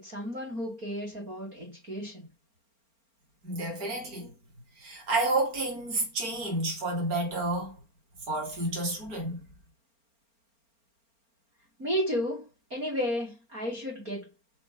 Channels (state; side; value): late; left; 4.4 ms